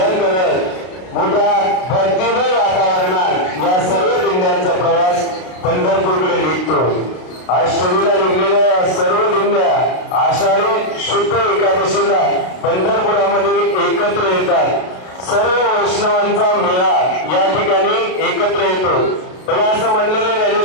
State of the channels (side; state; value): right; late; 32 ms